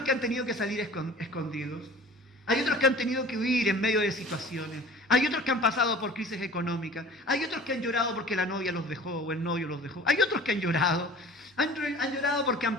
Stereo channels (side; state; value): both; normal; correlation 0.44